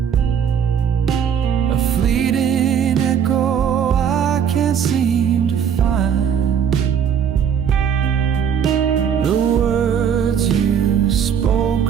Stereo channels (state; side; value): quieter; left; 7.9 dB